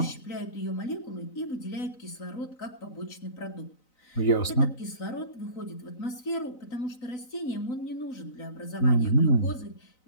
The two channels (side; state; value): right; late; 3.9 ms